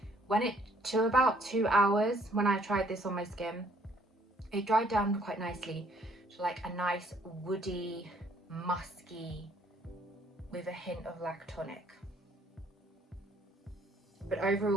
When it, to about 2 hours, when I tried this on my skin, it dried down quite nicely to like a nice woody, musky, with a hint of lactonic. But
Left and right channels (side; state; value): both; normal; correlation 0.63